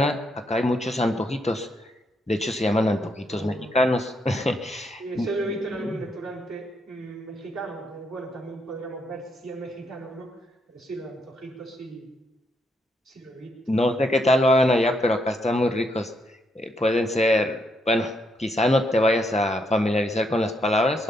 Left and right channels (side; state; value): both; normal; correlation 0.77